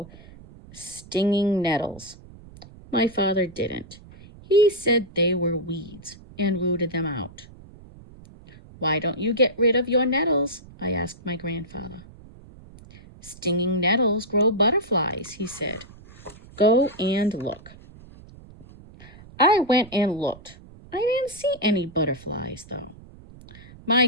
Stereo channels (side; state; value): right; noise; rumble, 20 dB below the sound